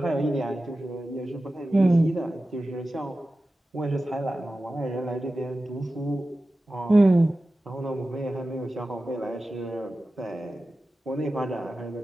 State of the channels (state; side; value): normal; both; correlation 0.94